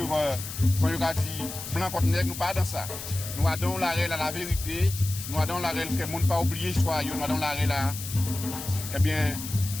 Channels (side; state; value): left; noise; hiss, 9 dB below the sound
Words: comme il a dit, blanc contre nègre, nous pas dans ça. Nous avons l'arrêt à la vérité, nous avons l'arrêt que le monde pas oublié l'histoire, nous avons l'arrêt là, eh bien,